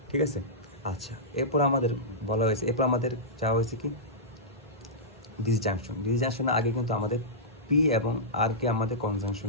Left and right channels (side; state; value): both; normal; correlation -0.14